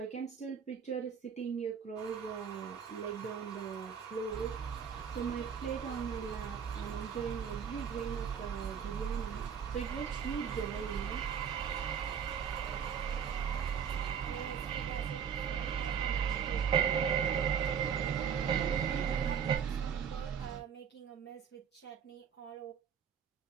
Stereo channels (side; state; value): left; quieter; 7.5 dB